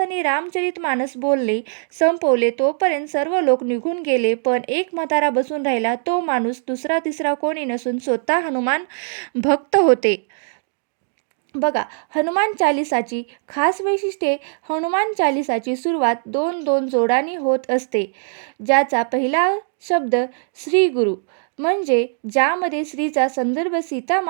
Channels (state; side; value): silent; left; digital silence